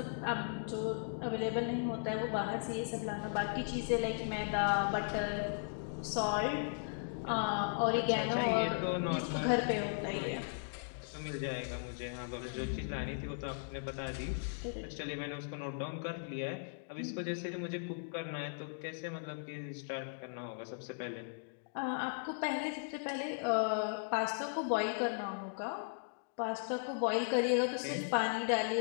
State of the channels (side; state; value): right; silent; digital silence